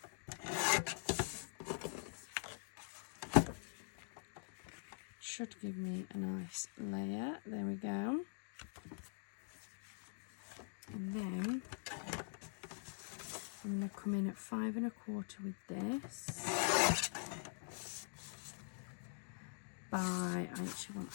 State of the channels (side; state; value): right; silent; digital silence